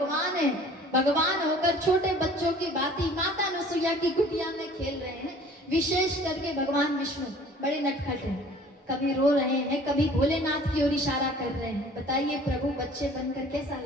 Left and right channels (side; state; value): both; normal; correlation 0.50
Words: है। भगवान होकर छोटे बच्चों की भांति माता अनुसुईया की कुटिया में खेल रहे हैं। विशेष करके भगवान विष्णु बड़े नटखट हैं, कभी रो रहे हैं, कभी भोलेनाथ की ओर इशारा कर रहे हैं। बताइए प्रभु बच्चे बनकर कैसा